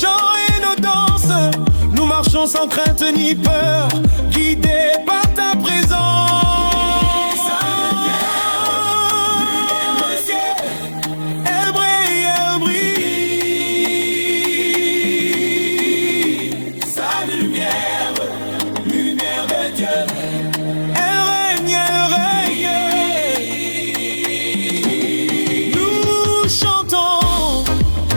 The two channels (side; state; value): both; inverted; correlation -1.00